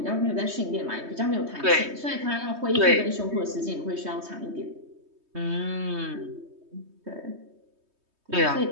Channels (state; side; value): late; left; 3.2 ms